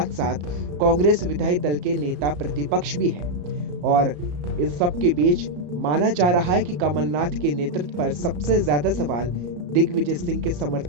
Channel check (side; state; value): left; late; 34 ms